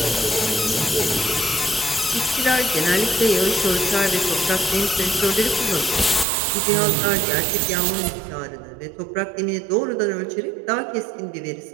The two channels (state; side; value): drops out; left; at 6.2 s